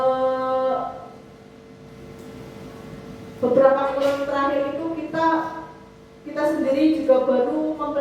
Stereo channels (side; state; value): both; identical; correlation 1.00